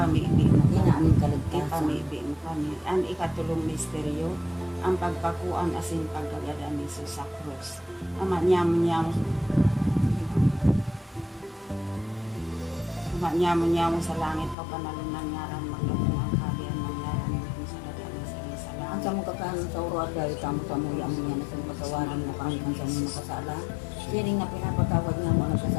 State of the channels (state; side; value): drops out; right; at 14.6 s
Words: mo kami. hinaaning kaligtasan. Ipamibig mo kami. Ang ikatulong misteryo, ang pagpakuan asin pagkagada ni Jesus sa krus. Amanyam-nyam sa langit pagpanalunan ngaran maglabong ang kalian ng ngaran mo sa dadaan sa iyo sa Ang langit. sa mong kakanon sa uro at gawin tamo sa mga yaman niya na sa patawarin mo kami ang sa mga makasala. Siring na pinapatawad nga mo